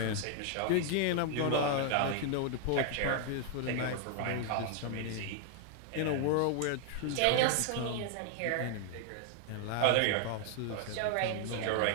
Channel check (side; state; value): both; different; correlation 0.00